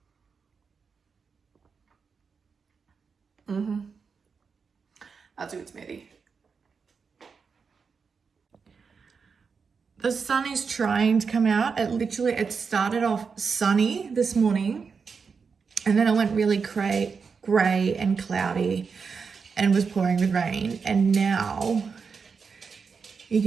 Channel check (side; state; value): left; quieter; 5.5 dB